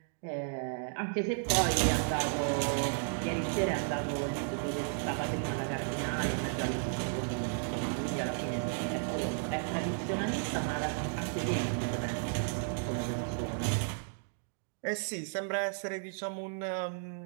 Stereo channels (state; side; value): silent; left; digital silence